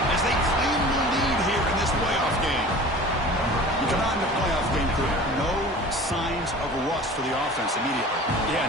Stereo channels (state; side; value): normal; both; correlation 0.41